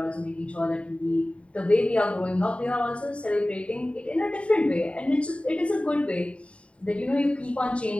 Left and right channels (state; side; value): late; right; 0.062 ms